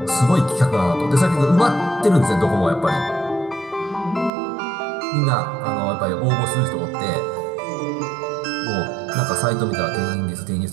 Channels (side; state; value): left; drops out; at 4.3 s